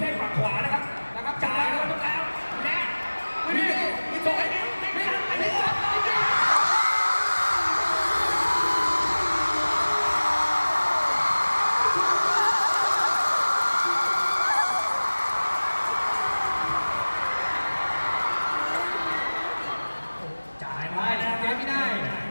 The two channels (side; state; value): both; inverted; correlation -1.00